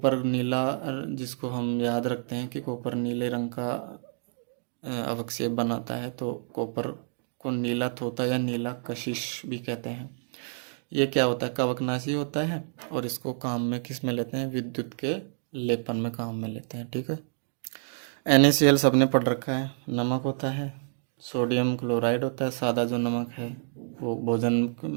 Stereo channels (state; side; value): silent; left; digital silence